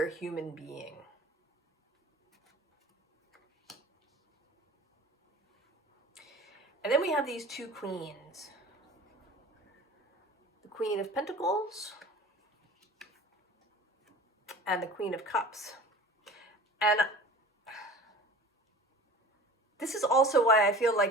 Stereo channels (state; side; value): normal; both; correlation 0.40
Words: human being. And then we have these two queens. The Queen of Pentacles and the Queen of Cups. And this is also why I feel